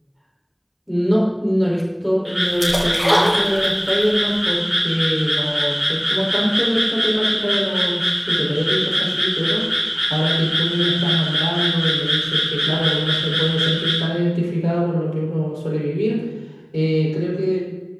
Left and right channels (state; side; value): identical; both; correlation 1.00